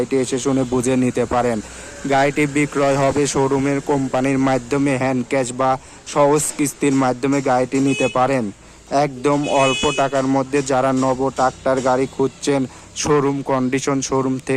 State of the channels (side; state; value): both; identical; correlation 1.00